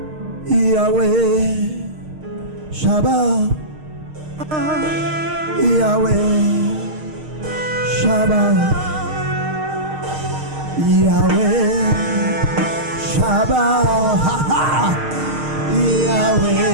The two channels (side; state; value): left; late; 6.5 ms